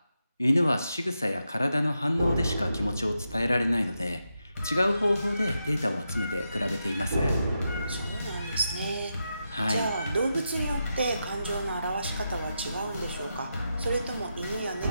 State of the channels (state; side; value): inverted; both; correlation -0.86